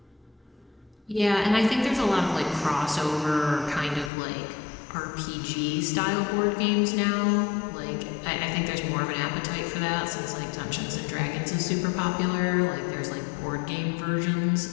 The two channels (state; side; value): drops out; right; at 4.1 s